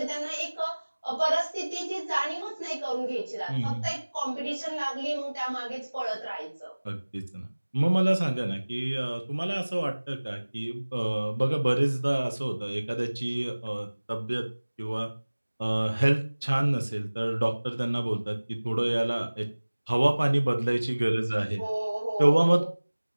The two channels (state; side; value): inverted; both; correlation -1.00